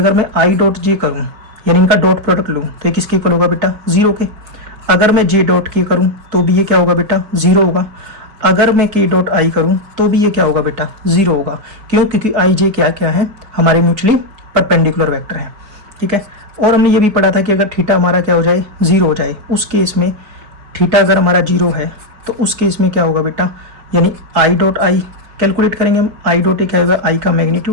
मैं आई डॉट जे करूँ, यानी इनका डॉट प्रोडक्ट लूँ, तो ये किसके इक्वल होगा बेटा, 0 के। अगर मैं जे डॉट के करूँ तो भी ये क्या होगा बेटा, 0 होगा। अगर मैं के डॉट आई करूँ तो भी ये क्या होगा बेटा, 0 होगा। क्यों, क्योंकि आई जे क्या क्या है, हमारे म्यूचुअली परपेंडिकुलर वेक्टर हैं। ठीक है। और हमने ये भी पढ़ा था कि अगर थीटा हमारा क्या हो जाए, 0 हो जाए, उस केस में थीटा अगर हमारा 0 है, तो उस केस में क्या होगा बेटा, यानी आई डॉट आई कैलकुलेट करेंगे हम। आई डॉट ए क्या होगा, आई का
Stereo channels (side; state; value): left; late; 5.2 ms